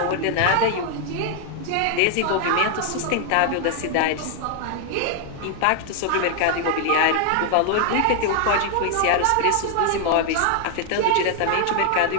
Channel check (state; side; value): different; both; correlation 0.00